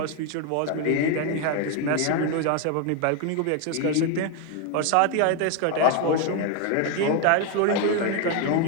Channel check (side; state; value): both; different; correlation 0.01